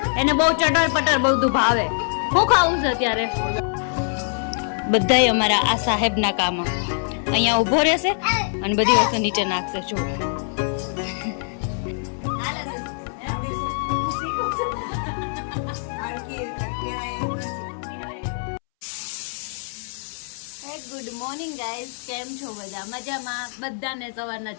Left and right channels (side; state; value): right; silent; 63 dB below the other